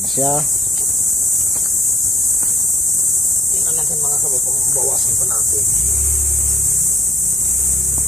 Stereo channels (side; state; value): both; normal; correlation 0.69